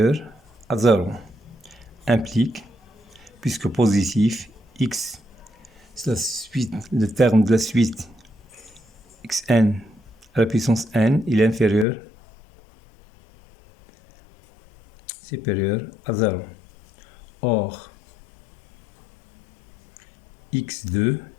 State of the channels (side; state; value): right; drops out; at 11.9 s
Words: à 0. Implique, puisque positif, x, c'est la suite, le terme de la suite xn à la puissance n, il est inférieur, supérieur à 0. Or, x2,